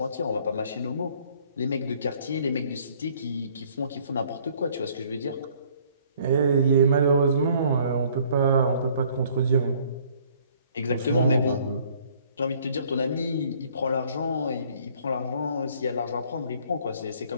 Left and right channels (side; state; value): both; inverted; correlation -0.59